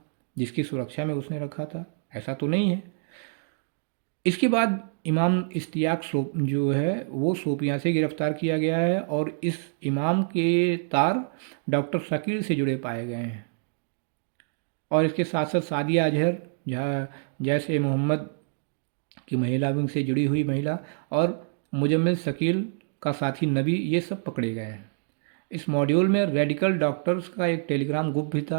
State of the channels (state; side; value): silent; left; digital silence